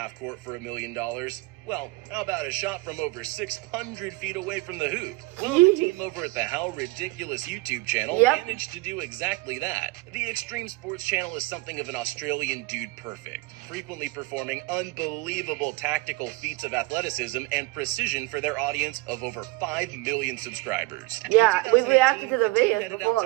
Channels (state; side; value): quieter; left; 23.4 dB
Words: court for $1 million? Well, how about a shot from over 600 feet away from the hoop? Well, the team over at the How Ridiculous YouTube channel managed to do exactly that. The Extreme Sports channel is something of an Australian dude perfect, frequently performing unbelievable tactical feats of athleticism and precision for their audience of over 5 million subscribers. Yeah, In we reacted to the 2018, videos headed before.